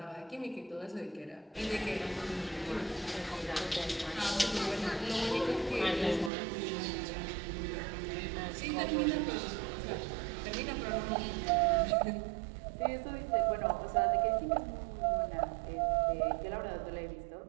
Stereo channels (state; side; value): drops out; left; at 6.3 s